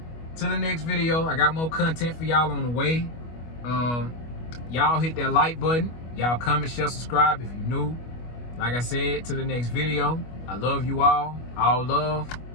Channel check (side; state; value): right; late; 25 ms